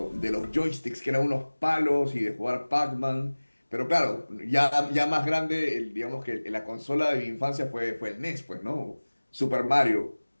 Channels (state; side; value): inverted; both; correlation -1.00